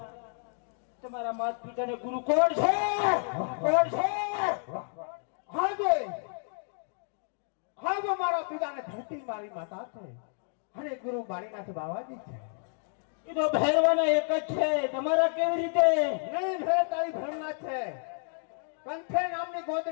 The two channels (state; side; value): silent; right; 58 dB below the other